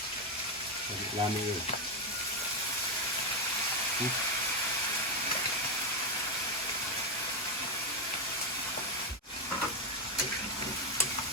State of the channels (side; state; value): both; normal; correlation 0.07